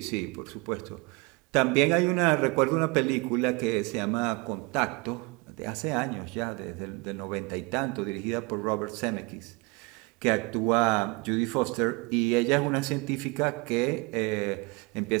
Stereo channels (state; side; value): quieter; left; 27.3 dB